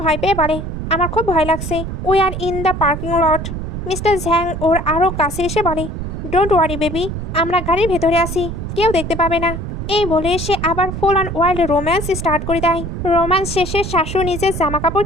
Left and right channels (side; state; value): right; noise; rumble, 6 dB below the sound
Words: ভয় পেয়ে বলে, আমার খুব ভয় লাগছে। We are in the parking lot. Mister Zhang ওর আরও কাছে এসে বলে, ডোন্ট ওয়ারি বেবি, আমরা গাড়ির ভেতরে আছি, কেউ দেখতে পাবে না। এই বলে সে আবার full on wild romance start করে দেয়। রোম্যান্স শেষে শাশু নিজের জামা কাপড়